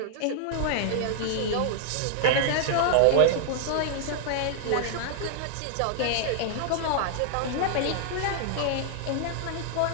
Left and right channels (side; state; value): both; different; correlation -0.01